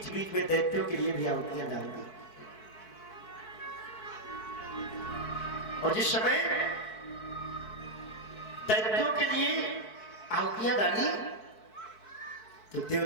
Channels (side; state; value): right; late; 4.6 ms